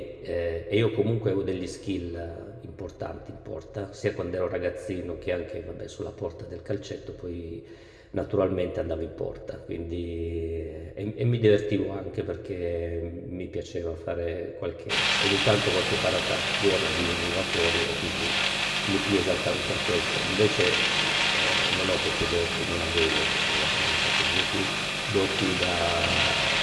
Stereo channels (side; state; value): both; identical; correlation 1.00